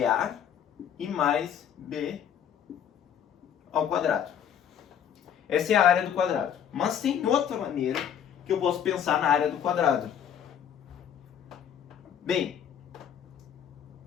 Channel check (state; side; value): quieter; right; 9.0 dB